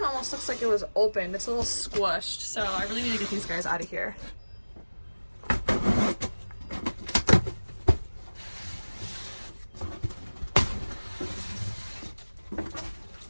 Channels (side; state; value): both; inverted; correlation -1.00